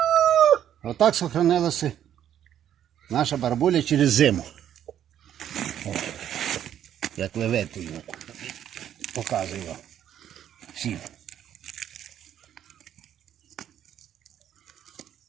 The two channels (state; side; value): quieter; left; 10.3 dB